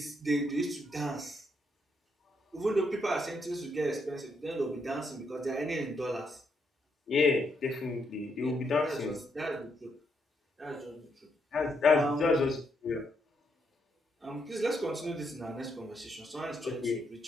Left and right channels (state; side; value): normal; both; correlation 0.77